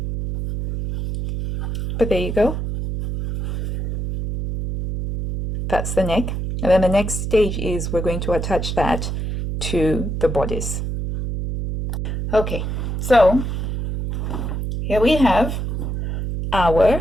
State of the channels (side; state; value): right; noise; hum, 3 dB below the sound